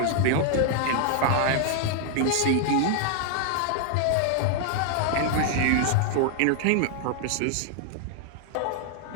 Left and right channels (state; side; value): different; both; correlation 0.00